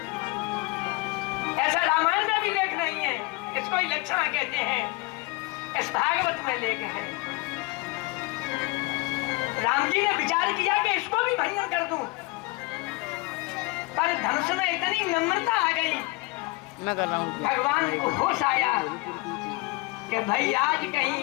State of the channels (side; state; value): right; quieter; 23.7 dB